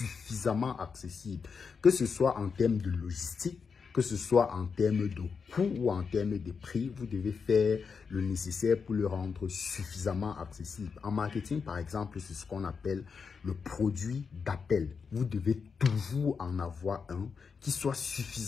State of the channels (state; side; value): quieter; right; 5.6 dB